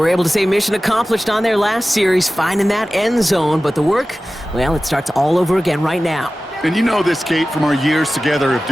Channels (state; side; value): normal; both; correlation 0.96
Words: able to say mission accomplished on their last series, finding that end zone, but the work, well, it starts all over again right now. And you know this, Kate, from our years together of